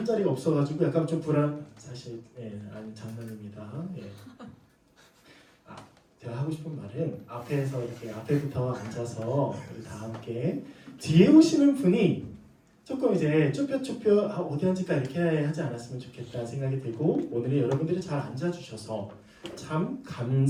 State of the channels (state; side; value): identical; both; correlation 1.00